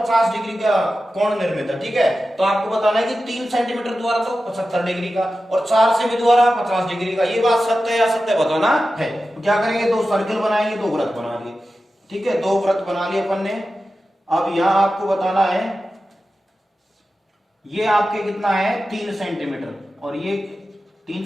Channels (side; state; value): both; normal; correlation 0.93